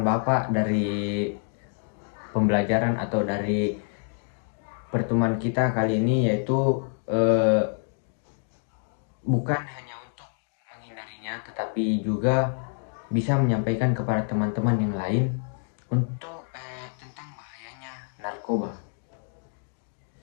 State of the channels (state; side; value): silent; right; 60 dB below the other